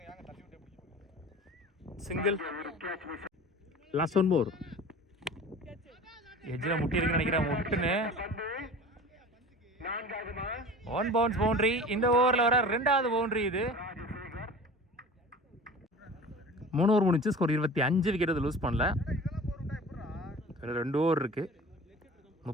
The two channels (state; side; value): normal; both; correlation 0.39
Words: சிங்கிள் லாஸ்ட் ஒன் மோர் எஜ்ஜில் முட்டி இருக்குன்னு நினைக்கிறேன் முட்டுன்னு 1 பவுன்ஸ் பவுண்டரி இந்த ஓவரில் வர 2வது பவுண்டரி இது 3 ஓவர் முடிச்சு ஸ்கோர் 25 விக்கெட் அது லூஸ் பண்ணல 2 ஓவர் இருக்கு